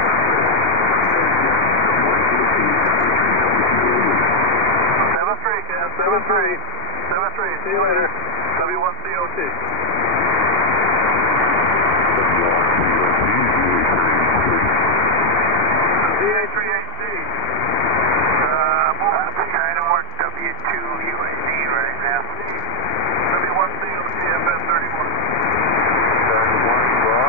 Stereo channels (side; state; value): left; late; 2.7 ms